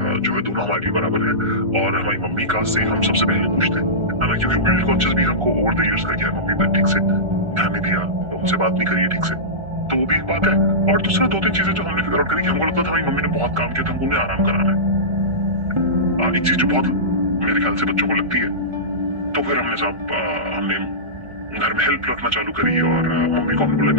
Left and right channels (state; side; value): late; left; 1.4 ms